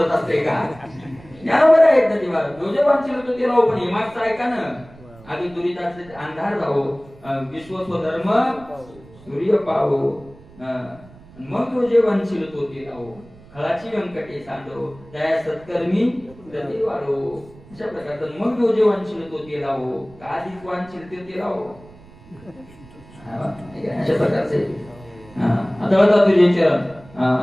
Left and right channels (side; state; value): right; noise; rumble, 22 dB below the sound